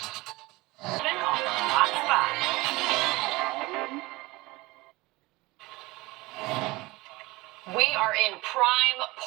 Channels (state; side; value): quieter; left; 21.6 dB